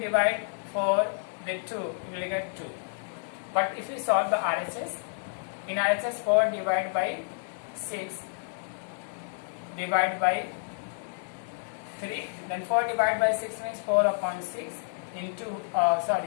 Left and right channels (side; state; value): right; silent; digital silence